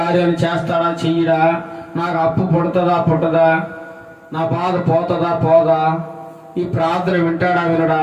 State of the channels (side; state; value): both; identical; correlation 1.00